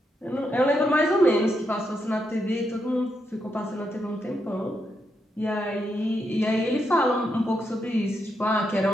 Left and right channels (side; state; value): both; normal; correlation 0.81